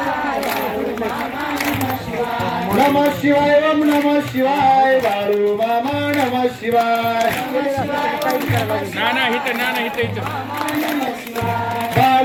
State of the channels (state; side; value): identical; both; correlation 1.00